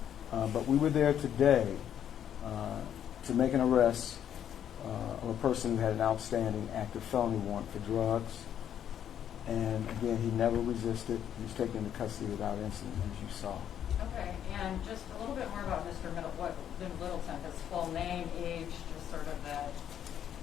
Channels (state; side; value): quieter; right; 9.7 dB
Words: But we were there today to make an arrest of a person who had an outstanding active felony warrant for drugs. And again, he never resisted. He was taken into custody without incident, as you saw. Okay, and just a little bit more about Mr. Littleton, his full name, age, just sort of that.